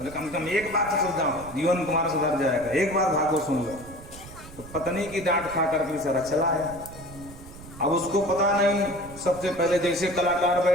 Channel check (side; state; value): right; noise; rumble, 16 dB below the sound